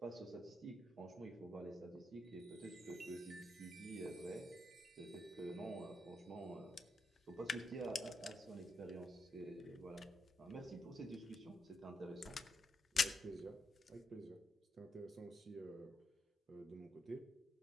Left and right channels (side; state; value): both; normal; correlation 0.81